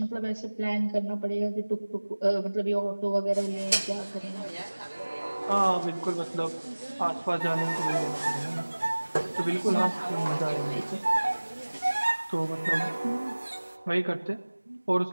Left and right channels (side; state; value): both; inverted; correlation -1.00